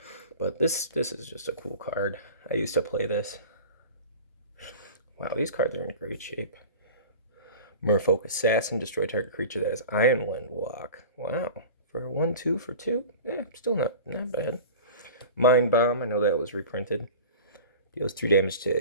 But this is just a cool card. I used to play this. Wow, these cards are in great shape. Merfolk Assassin, destroy target creature that has Ironwind Walk. Wow, for 1/2 for 2? Yeah, still not bad. Mind Bomb, I know that was reprinted. Deals 2 damage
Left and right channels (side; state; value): both; inverted; correlation -0.36